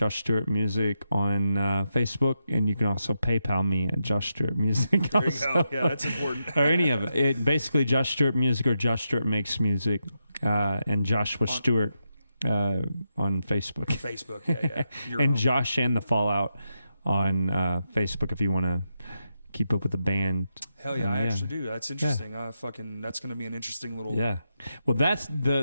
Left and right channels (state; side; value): inverted; both; correlation -0.85